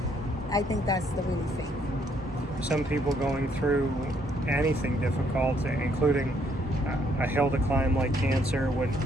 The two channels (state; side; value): normal; both; correlation 0.69